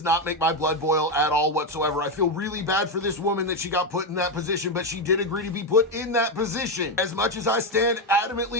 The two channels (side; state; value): both; normal; correlation 0.07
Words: not make my blood boil at all whatsoever. I feel really bad for this woman that she got put in that position, but she did agree to be put in that position. As much as I stand